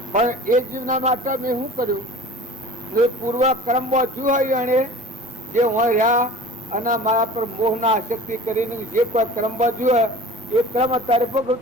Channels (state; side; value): normal; both; correlation 0.41